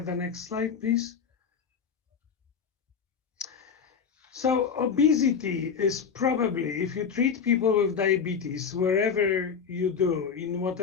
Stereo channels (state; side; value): quieter; right; 6.4 dB